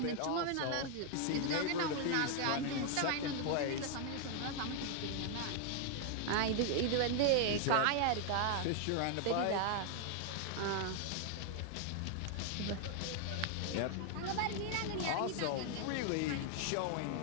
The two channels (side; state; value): both; different; correlation 0.00